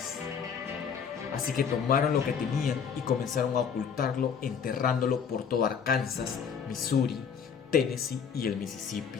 Así que tomaron lo que tenían y comenzaron a ocultarlo, enterrándolo por todo Arkansas, Missouri, Tennessee y el Mississippi.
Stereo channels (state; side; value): quieter; right; 6.9 dB